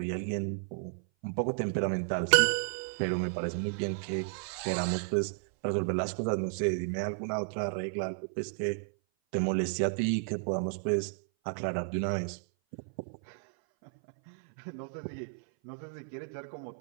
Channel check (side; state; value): left; silent; 56 dB below the other